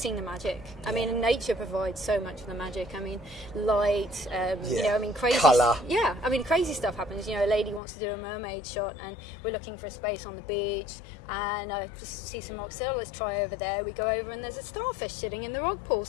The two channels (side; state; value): right; drops out; at 7.8 s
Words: the magic. I mean, nature provides so much of the magic. I mean, light, you know, I mean, crazy... Colour. Yeah, I mean, crazy stuff happens. You know, a lady wants to do a mermaid shot and we're looking for a space on the beach, and I just see some rocks. So let's try over there. We go over and there's a starfish sitting in the rock pool